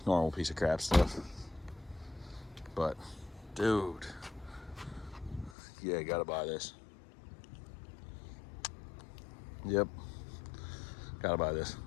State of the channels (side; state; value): right; drops out; at 5.6 s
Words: normal piece of crap stuff. But, dude, yeah, gotta buy this. Yep, gotta buy this.